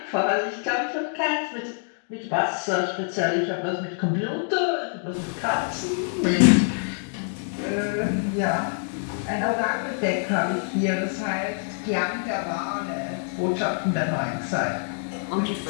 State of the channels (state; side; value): silent; right; 61 dB below the other